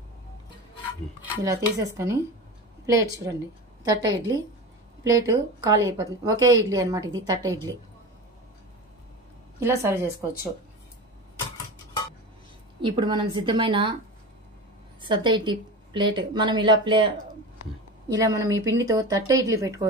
ఇలా తీసేసుకొని ప్లేట్ చూడండి తట్ట ఇడ్లీ ప్లేటు ఖాళీ అయిపోతుంది. ఒకే ఇడ్లీ అనమాట ఇది తట్ట ఇడ్లీ. ఇలా సర్వ్ చేసుకోవచ్చు. ఇప్పుడు మనం సిద్ధమైన సద్ద ఇడ్లీ ప్లేట్ మనం ఇలా మనం ఈ పిండితో తట్ట ఇడ్లీ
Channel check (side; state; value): both; normal; correlation 0.28